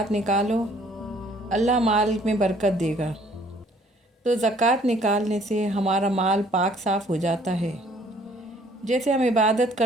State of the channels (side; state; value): both; normal; correlation 0.59